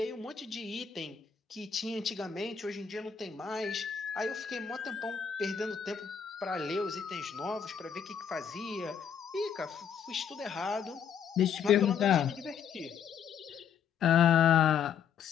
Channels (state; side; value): quieter; right; 7.6 dB